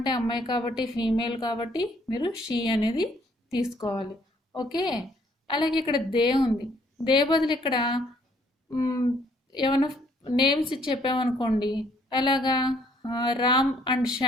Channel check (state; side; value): normal; both; correlation 0.64